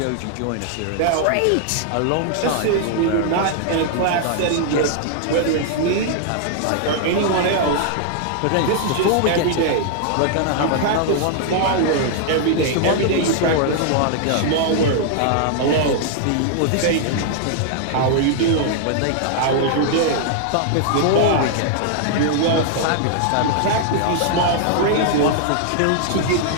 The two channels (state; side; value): different; both; correlation -0.01